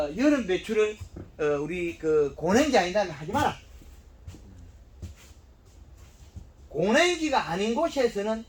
여름 배추를 우리 그 고냉지 아니다면 하지 마라. 고냉지가 아닌 곳에서는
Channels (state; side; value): identical; both; correlation 1.00